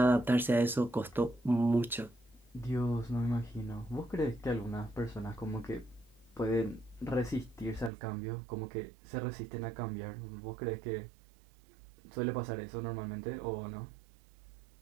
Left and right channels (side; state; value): left; drops out; at 7.9 s